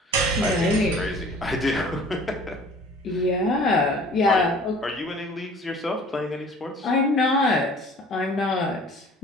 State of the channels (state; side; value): normal; both; correlation 0.48